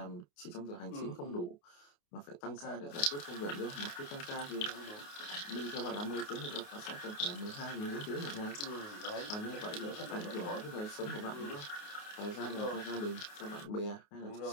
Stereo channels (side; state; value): right; late; 28 ms